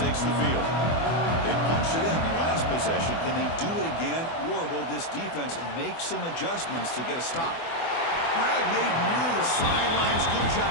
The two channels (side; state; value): right; late; 24 ms